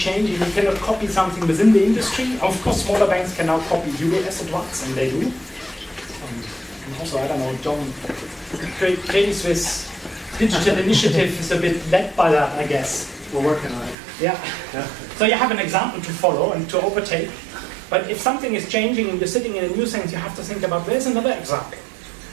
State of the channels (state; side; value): drops out; left; at 14.0 s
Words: you cannot copy something within the industry. Of course, smaller banks can now copy US at once, and they do. And also, I don't know, John, Credit Suisse digital initiative is a bit led by that, I guess. We're working on it. Yeah. So you have an example to follow and to overtake. But if something is changing and you're sitting in a new sense, you have to think about, where's another example?